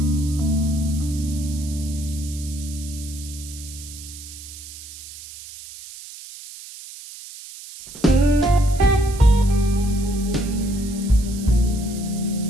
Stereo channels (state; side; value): noise; right; hiss, 15 dB below the sound